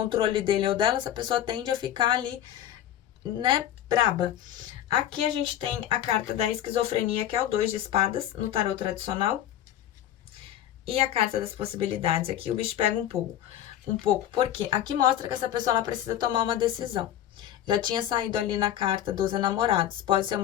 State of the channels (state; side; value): quieter; right; 11.5 dB